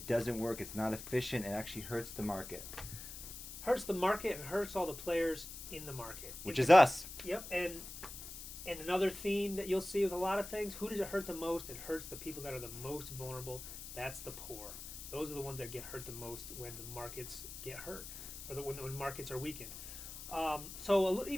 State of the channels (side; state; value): left; noise; hiss, 10 dB below the sound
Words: doesn't work. It's not efficient. It actually hurts the market. Hurts the market and hurts all the players in the market. Which is us. Yep, and another theme that you'll see with a lot of things, who does it hurt the most? It hurts the people that are the most vulnerable. That's the poor. Those are the ones that get hurt the most when the markets get hurt, or when markets are weakened. So